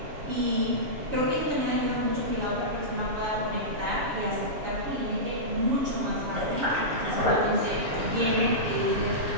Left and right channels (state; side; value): late; left; 7.1 ms